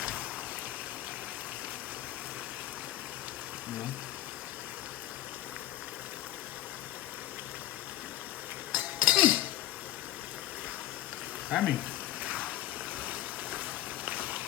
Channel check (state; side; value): quieter; right; 14.2 dB